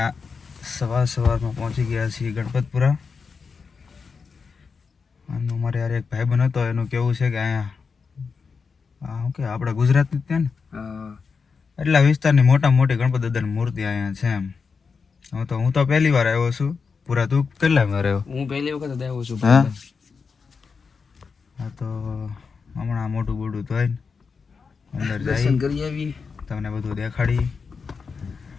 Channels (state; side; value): quieter; right; 5.3 dB